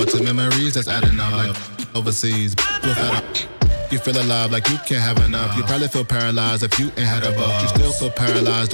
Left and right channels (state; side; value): inverted; both; correlation -1.00